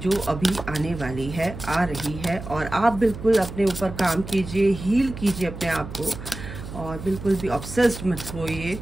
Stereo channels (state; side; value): noise; right; hum, 11 dB below the sound